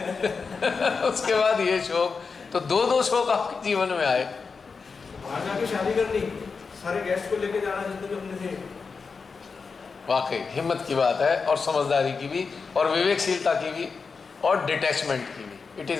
बाद ये शोक, तो दो शोक आपके जीवन में आए। बाहर जाके शादी करनी, सारे गेस्ट को लेके जाना जितने भी अपने थे। वाकई हिम्मत की बात है, और समझदारी की भी, और विवेकशीलता की भी, और डिटैचमेंट की भी। It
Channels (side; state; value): right; quieter; 5.0 dB